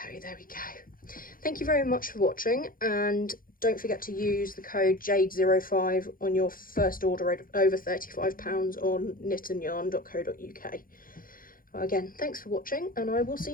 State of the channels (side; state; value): right; late; 0.41 ms